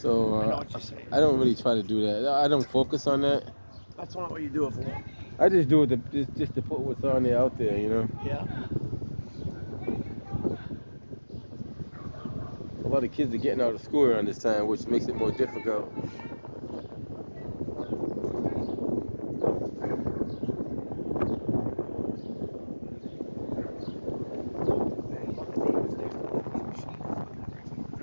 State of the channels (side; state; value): both; inverted; correlation -1.00